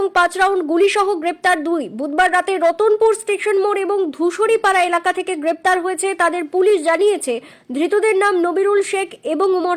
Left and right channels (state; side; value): identical; both; correlation 1.00